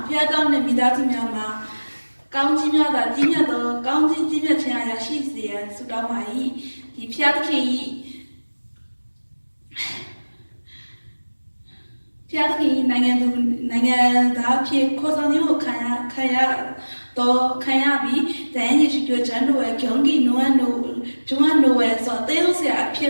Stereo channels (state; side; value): inverted; both; correlation -1.00